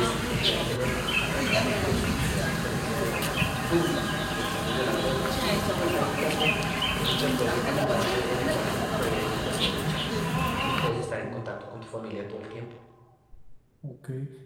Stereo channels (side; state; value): both; identical; correlation 1.00